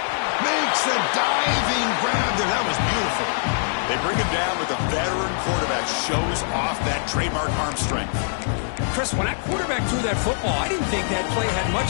Makes a diving grab there. That was beautiful. They bring it down with a veteran quarterback. Shows off that trademark arm strength. Chris, when that quarterback threw that football, I didn't think that play had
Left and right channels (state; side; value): silent; right; digital silence